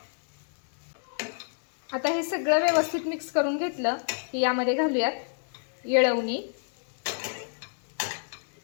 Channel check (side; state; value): right; silent; digital silence